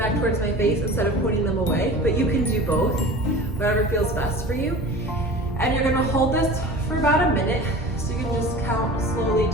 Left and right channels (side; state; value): both; normal; correlation 0.38